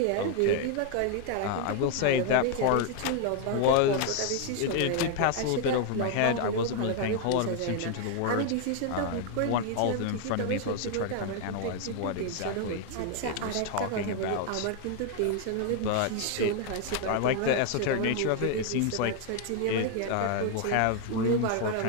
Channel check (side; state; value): both; different; correlation 0.01